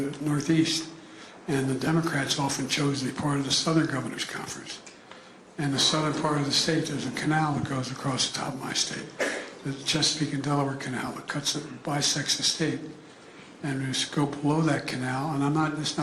Northeast, and the Democrats often chose to be part of the Southern Governors Conference. In the southern part of the state, there's a canal that goes across the top of my state, the Chesapeake and Delaware Canal that bisects the state. And we just go below that canal, and it's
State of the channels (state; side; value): identical; both; correlation 1.00